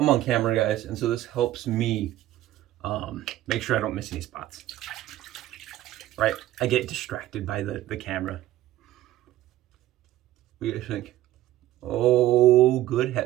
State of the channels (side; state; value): left; quieter; 14.6 dB